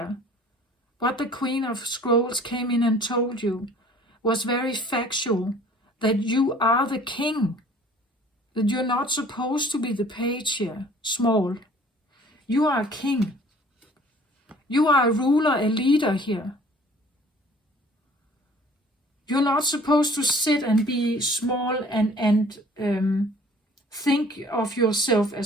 what the Queen of Scrolls came in and told you, was very factual, that you are the king, that you're not supposed to be the page here, small. You are a king. You are a ruler, a leader here. You're not supposed to sit and be small and think of yourself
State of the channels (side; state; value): both; normal; correlation 0.51